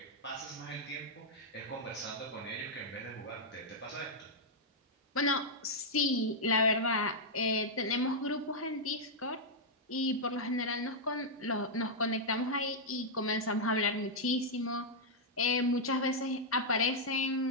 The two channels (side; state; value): both; normal; correlation -0.05